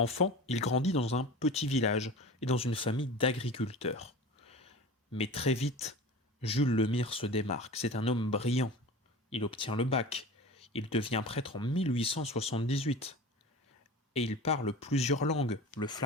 il grandit dans un petit village et dans une famille d'agriculteurs. Mais très vite, Jules Lemire se démarque. C'est un homme brillant. Il obtient le bac. Il devient prêtre en 1878. Et il parle plusieurs langues, le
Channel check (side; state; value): both; normal; correlation 0.34